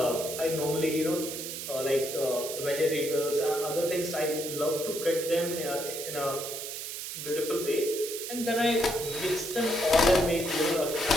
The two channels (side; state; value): right; noise; hiss, 7 dB below the sound